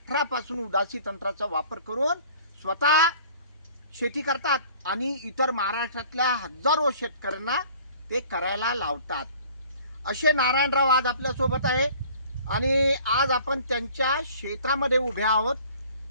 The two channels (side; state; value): both; inverted; correlation -0.50